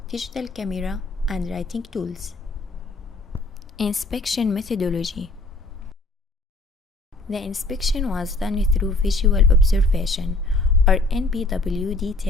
digital camera, and writing tools. Inspection methodology. The inspection was done through visual observation, or NPWD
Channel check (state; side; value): quieter; right; 3.0 dB